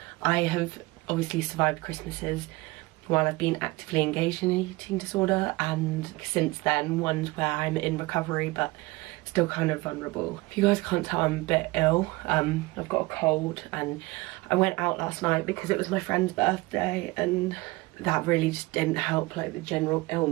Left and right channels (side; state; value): left; quieter; 22.2 dB